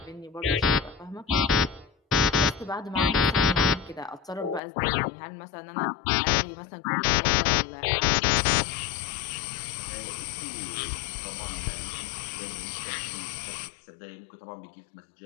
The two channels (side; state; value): right; drops out; at 4.6 s